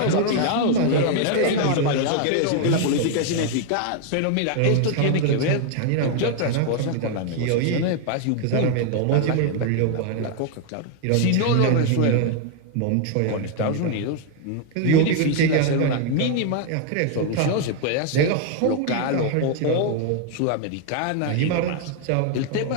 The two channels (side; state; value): both; different; correlation 0.00